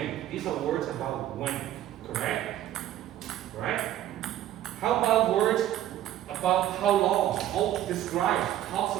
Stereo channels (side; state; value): left; quieter; 12.7 dB